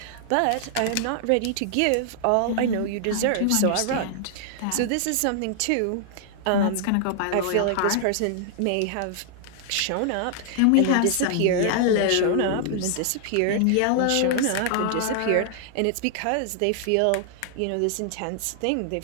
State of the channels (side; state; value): both; different; correlation 0.00